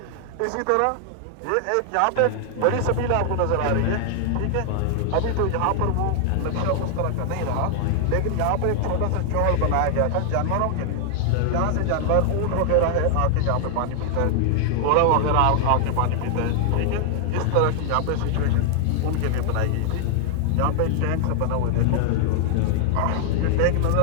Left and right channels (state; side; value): different; both; correlation 0.00